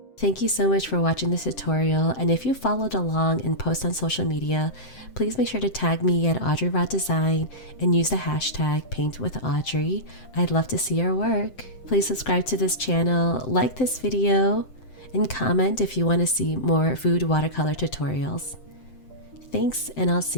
Thank you so much for watching this tutorial, and if you followed along and post on social media, please make sure to tag me at Audrey Raw Design and use the hashtag #PaintWithAudrey. I'd love to see your work. Please subscribe to this channel, like this video, and comment if you want to see more food watercolor tutorials. Thanks, and I'll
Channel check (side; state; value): right; late; 7.7 ms